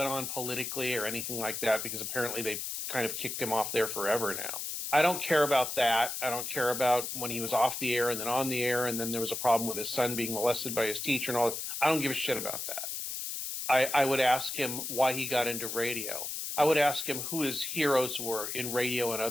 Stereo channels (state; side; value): noise; left; hiss, 5 dB below the sound